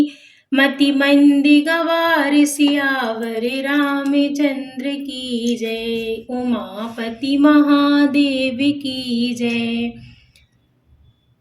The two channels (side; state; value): both; identical; correlation 1.00